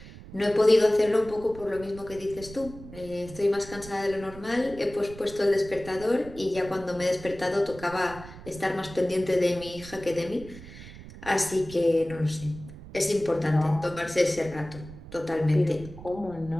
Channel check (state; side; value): noise; right; rumble, 16 dB below the sound